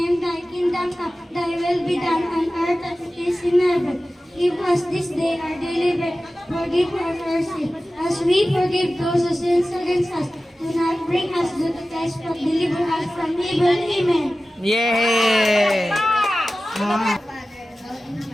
thy kingdom come, thy will be done on earth as it is in heaven. Give us this day our daily bread, forgive us our sins, as we forgive those who sin against us. Do not bring us to the test, but deliver us from evil. Amen. Yay!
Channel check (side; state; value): both; normal; correlation 0.96